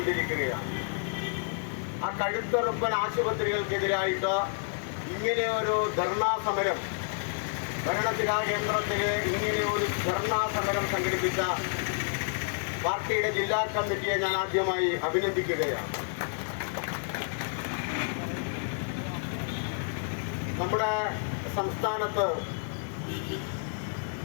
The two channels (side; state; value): right; silent; digital silence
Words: ആ കഴുത്തുറപ്പൻ ആശുപത്രികൾക്കെതിരായിട്ട് ഇങ്ങനെയൊരു ധർണാ സമരം ഭരണസിരാ കേന്ദ്രത്തിൽ ഇങ്ങനെയൊരു ധർണാ സമരം സംഘടിപ്പിച്ച പാർട്ടിയുടെ ജില്ലാ കമ്മിറ്റിയെ ഞാൻ ആദ്യമായി അഭിനന്ദിക്കുകയാണ്. നമ്മുടെ സംസ്ഥാനത്ത്